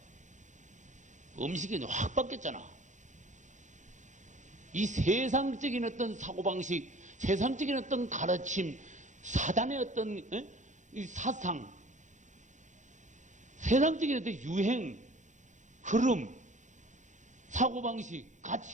음식이 확 바뀌었잖아. 이 세상적인 어떤 사고방식, 세상적인 어떤 가르침, 사단의 어떤 이 사상, 세상적인 어떤 유행, 흐름, 사고방식,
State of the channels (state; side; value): late; left; 0.35 ms